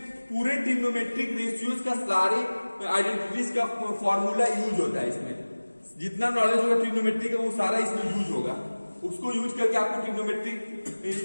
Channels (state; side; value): inverted; both; correlation -1.00